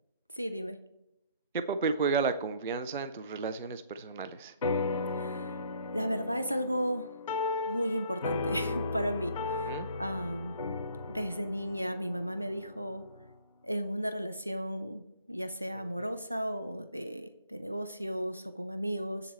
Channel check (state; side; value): inverted; both; correlation -0.63